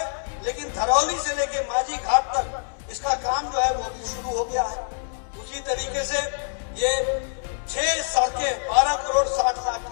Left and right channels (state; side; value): silent; right; 62 dB below the other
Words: लेकिन धरौली से लेके माझी घाट तक इसका काम जो है वो भी शुरू हो गया है। उसी तरीके से ये 6 सड़कें 12 करोड़ 60 लाख